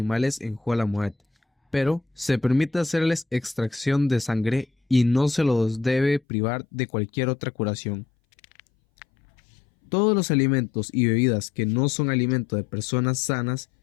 en Jolamuet, pero se permite hacerles extracción de sangre y no se los debe privar de cualquier otra curación. Todos los alimentos y bebidas que no son alimento de personas sanas,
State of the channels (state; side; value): drops out; right; at 6.2 s